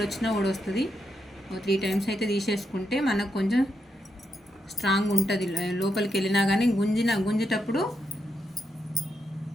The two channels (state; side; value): normal; both; correlation 0.83